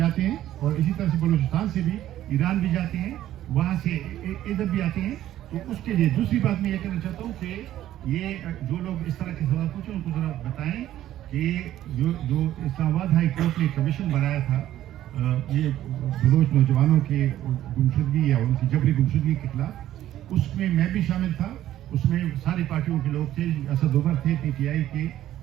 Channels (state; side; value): quieter; left; 12.9 dB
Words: ہیں. اور اسی طرح سے بلوچستان سے بھی ایران بھی جاتے ہیں, وہاں سے ادھر بھی آتے ہیں. تو اس کے لیے دوسری بات میں یہ کہنا چاہتا ہوں کہ یہ جو لوگ اس طرح کے سوال پوچھیں ان کو ذرا بتائیں کہ جو اسلام آباد ہائی کورٹ نے کمیشن بنایا تھا یہ بلوچ نوجوانوں کے گمشدگی یا ان کی جبری گمشدگی کے خلاف, اس میں میں بھی شامل تھا. اس میں ساری پارٹیوں کے لوگ تھے. اسد عمر تھے PTI کے,